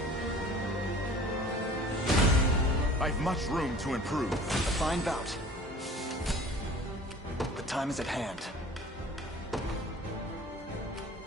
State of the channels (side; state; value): both; normal; correlation 0.46